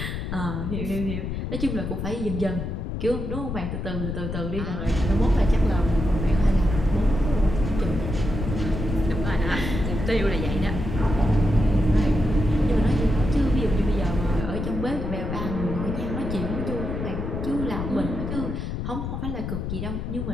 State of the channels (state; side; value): noise; left; rumble, 4 dB below the sound